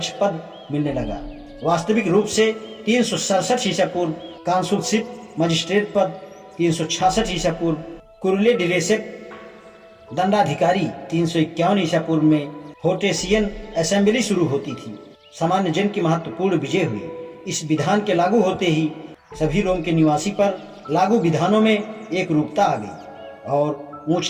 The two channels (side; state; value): both; identical; correlation 1.00